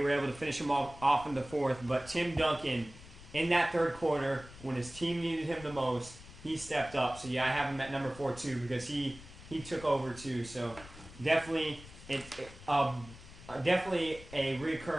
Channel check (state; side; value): noise; left; rumble, 17 dB below the sound